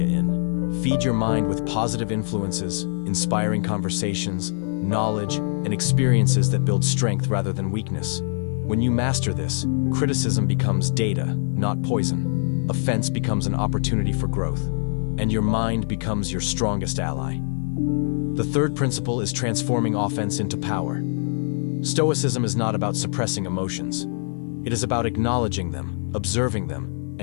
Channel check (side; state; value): right; silent; digital silence